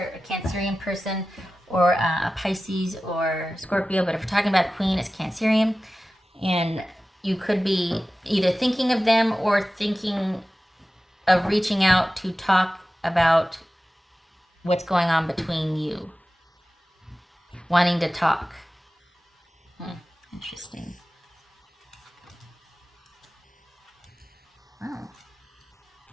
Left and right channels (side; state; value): both; normal; correlation 0.95